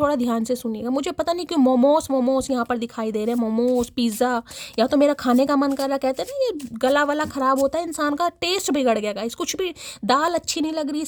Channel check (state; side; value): identical; both; correlation 1.00